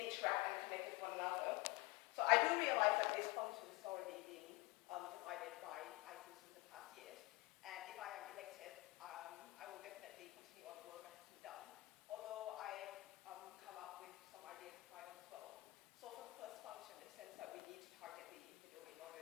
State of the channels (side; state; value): right; quieter; 22.3 dB